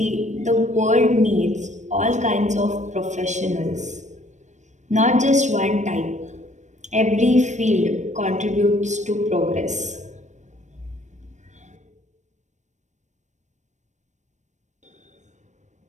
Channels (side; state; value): left; late; 0.34 ms